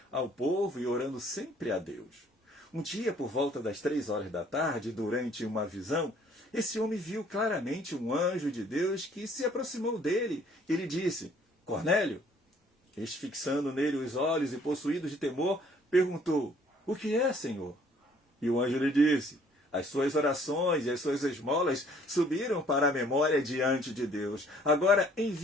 ao povo e orando sempre a Deus. Um dia, por volta das 3 horas da tarde, durante uma visão, esse homem viu claramente um anjo de Deus que se aproximou dele e lhe disse: Cornélio. Este, fixando nele os olhos e possuído de temor, perguntou: O que é, Senhor? E o anjo lhe disse: As suas orações e as suas esmolas subiram para a memória diante de Deus. Agora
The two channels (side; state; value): both; normal; correlation 0.59